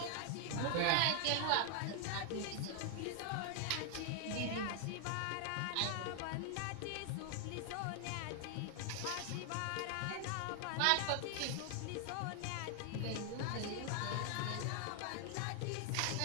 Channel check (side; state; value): both; different; correlation 0.00